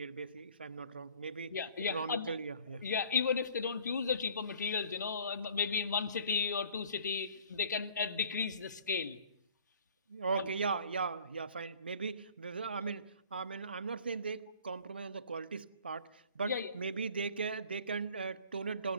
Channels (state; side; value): inverted; both; correlation -0.52